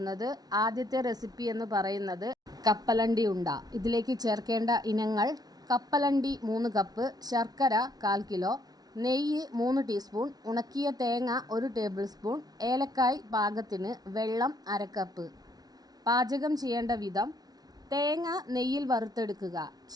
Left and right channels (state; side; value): late; left; 0.19 ms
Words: ആദ്യത്തെ റെസിപ്പി എന്ന് പറയുന്നത് കപ്പലണ്ടി ഉണ്ട. ഇതിലേക്ക് ചേർക്കേണ്ട ഇനങ്ങൾ: കപ്പലണ്ടി 3 കപ്പ്, ശർക്കര 1/4 കിലോ, നെയ്യ് 3 ടീസ്പൂൺ, ഉണക്കിയ തേങ്ങ 1 ടേബിൾ സ്പൂൺ, ഏലക്കായ് പാകത്തിന്, വെള്ളം 1/2 കപ്പ്. പാചകം ചെയ്യേണ്ട വിധം: തേങ്ങ നെയ്യിൽ വറുത്തെടുക്കുക.